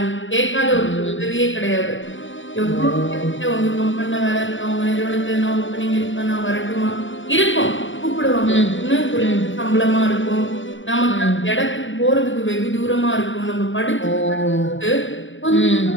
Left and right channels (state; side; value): late; right; 0.56 ms